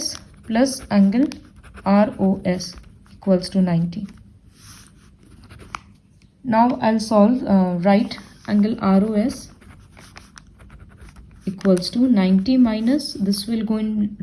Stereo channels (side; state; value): both; identical; correlation 1.00